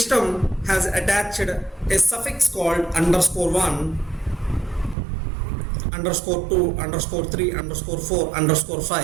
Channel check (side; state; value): left; drops out; at 5.0 s